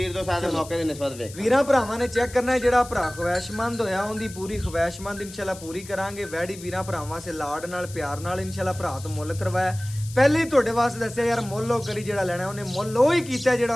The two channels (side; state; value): left; noise; hiss, 16 dB below the sound